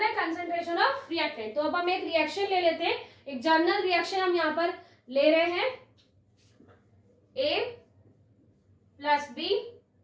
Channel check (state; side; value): identical; both; correlation 1.00